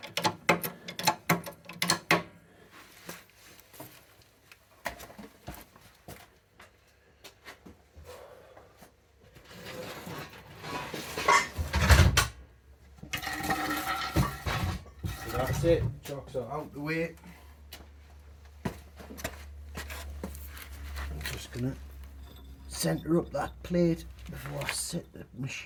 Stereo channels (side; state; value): both; identical; correlation 1.00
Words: That's it, chocks are out the way. I'm just going to centre up that plate before I set the